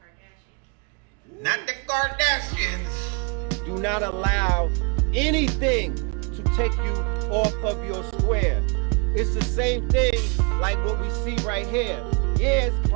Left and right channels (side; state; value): left; quieter; 34.7 dB